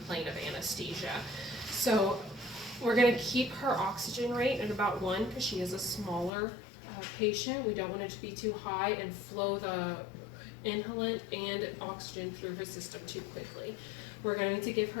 of anesthesia. So we're going to keep her oxygen rate at about 1 because she is a smaller patient. We don't want it to be too high and flow the inhalant and oxygen through her system too quickly. We're going to give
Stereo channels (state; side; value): drops out; right; at 6.3 s